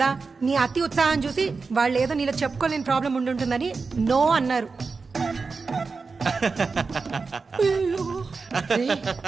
నీ అతి ఉత్సాహం చూసి వాళ్ళు ఏదో నీలో చెప్పుకోలేని ప్రాబ్లం ఉండుంటుందని నో అన్నారు.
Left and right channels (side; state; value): left; quieter; 4.5 dB